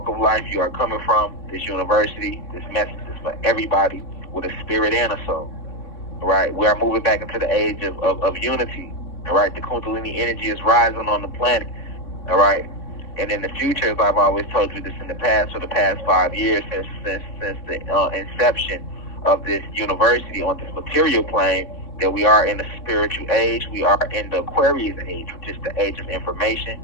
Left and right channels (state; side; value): late; right; 3.6 ms